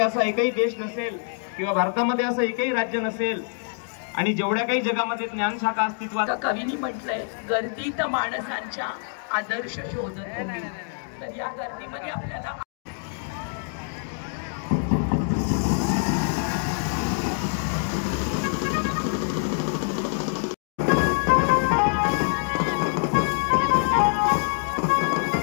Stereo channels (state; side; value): silent; right; 57 dB below the other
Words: एकही देश नसेल किंवा भारतामध्ये असं एकही राज्य नसेल आणि जेवढ्या काही जगामध्ये ज्ञानशाखा अस्तित्वात. कवींनी म्हटलंय, गर्दीत माणसांच्या आदर्श शोधतो मी. तर या गर्दीमध्ये आपल्याला